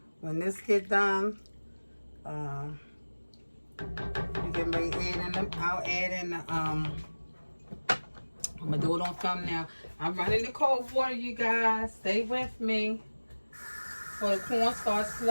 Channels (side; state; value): both; inverted; correlation -1.00